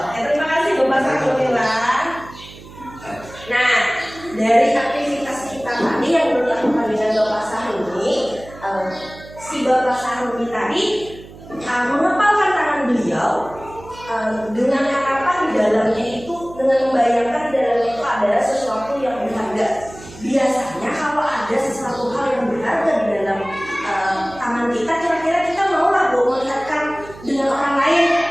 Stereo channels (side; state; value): right; noise; hum, 18 dB below the sound